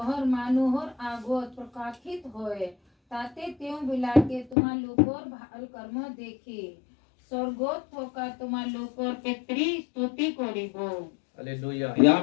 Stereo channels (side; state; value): right; drops out; at 4.5 s